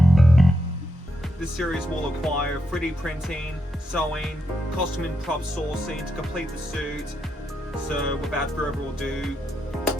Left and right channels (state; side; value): normal; both; correlation 0.82